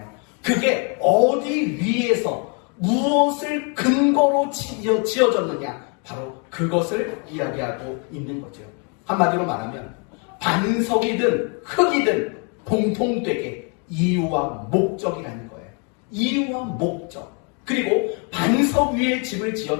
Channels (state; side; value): quieter; right; 36.6 dB